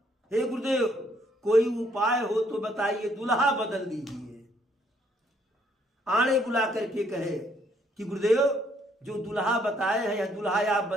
हे गुरुदेव, कोई उपाय हो तो बताइए, दुल्हा बदल दीजिए। आणे बुला करके कहे कि गुरुदेव, जो दुल्हा बताए हैं, यह दुल्हा आप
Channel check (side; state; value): both; normal; correlation 0.68